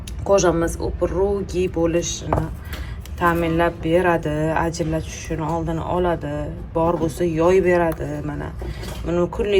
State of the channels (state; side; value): identical; both; correlation 1.00